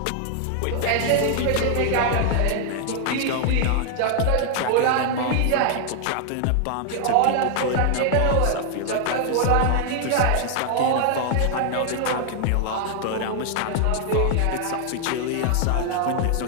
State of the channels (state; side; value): different; both; correlation 0.00